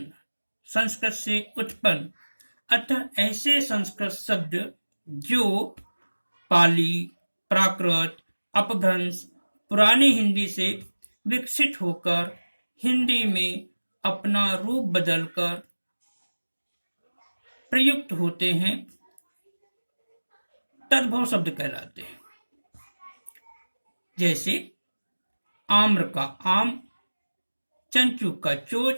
संस्कृत से उत्पन्न। अतः ऐसे संस्कृत शब्द जो पाली, प्राकृत, अपभ्रंश, पुरानी हिंदी से विकसित होकर हिंदी में अपना रूप बदलकर प्रयुक्त होते हैं, तद्भव शब्द कहलाते हैं। जैसे आम्र का आम, चंचू का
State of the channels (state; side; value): inverted; both; correlation -1.00